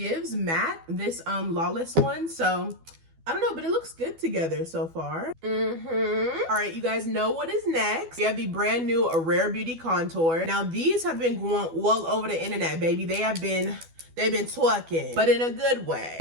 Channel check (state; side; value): late; left; 12 ms